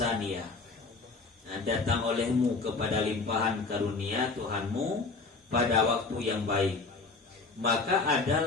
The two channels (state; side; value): quieter; right; 4.0 dB